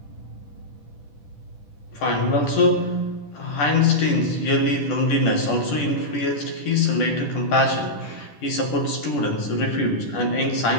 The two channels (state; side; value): late; right; 10 ms